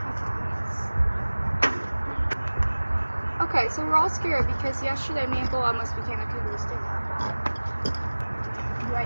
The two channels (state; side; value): inverted; both; correlation -1.00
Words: Okay, so we're all scared because yesterday me and Bull almost became a cougar stinger. Do I